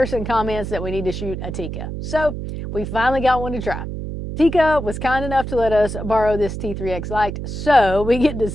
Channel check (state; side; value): noise; right; hum, 6 dB below the sound